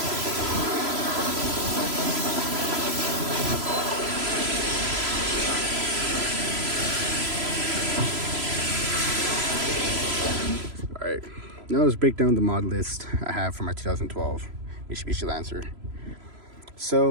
Alright, now let's break down the mod list I have for my 2012 Mitsubishi Lancer.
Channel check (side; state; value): left; late; 3.0 ms